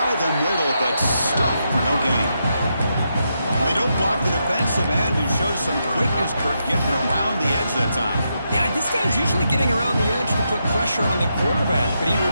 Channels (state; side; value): inverted; both; correlation -0.83